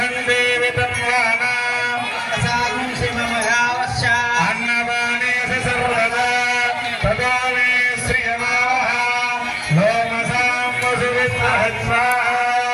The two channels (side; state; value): both; identical; correlation 1.00